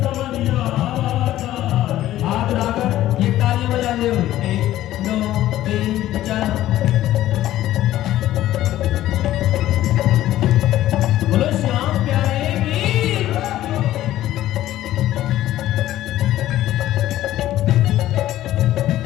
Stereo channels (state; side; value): quieter; right; 14.0 dB